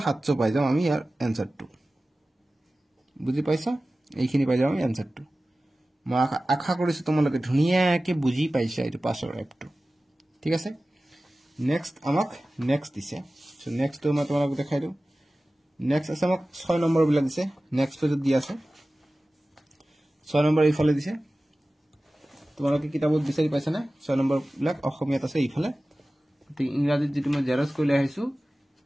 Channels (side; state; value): both; normal; correlation 0.96